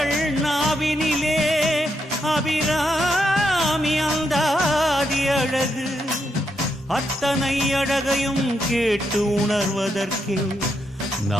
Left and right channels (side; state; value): both; normal; correlation 0.81